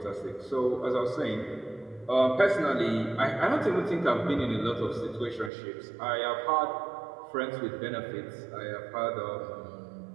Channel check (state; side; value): drops out; left; at 5.5 s